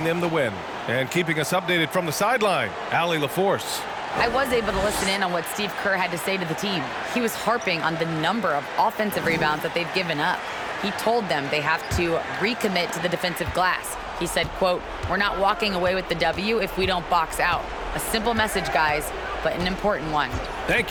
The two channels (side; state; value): both; identical; correlation 1.00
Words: them the win. And keeping us updated from the sideline, Allie LaForce. I was able to listen in on what Steve Kerr had to say to the team. He was harping on the number of offensive rebounds that they've given up. He told them they have to recommit to the defensive glass. He said, quote, "We're not walking away with the W if we don't box out." A simple message, guys, but an important one. Thank